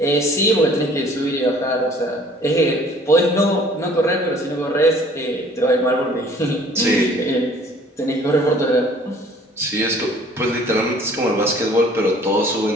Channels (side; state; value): both; normal; correlation 0.54